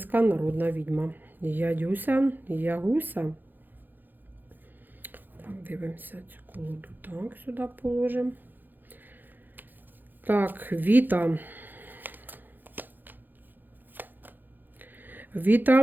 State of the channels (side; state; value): left; late; 0.089 ms